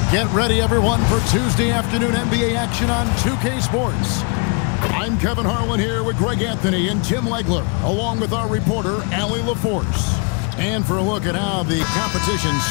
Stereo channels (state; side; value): quieter; right; 34.5 dB